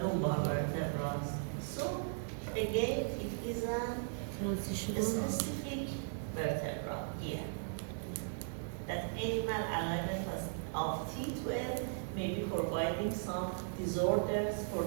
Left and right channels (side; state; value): left; silent; digital silence